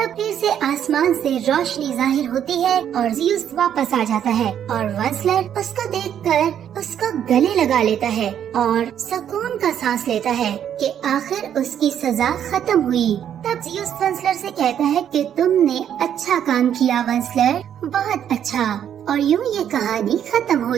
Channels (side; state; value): left; quieter; 9.5 dB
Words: फिर से आसमान से रोशनी जाहिर होती है और ज़ियुस वापस आ जाता है और वंसलर उसको देखकर उसको गले लगा लेता है और सुकून का सांस लेता है कि आखिर उसकी सजा खत्म हुई। तब ज़ियुस वंसलर से कहता है कि तुमने अच्छा काम किया वंसलर, बहुत अच्छा। और यूँ ये कहानी खत्म हो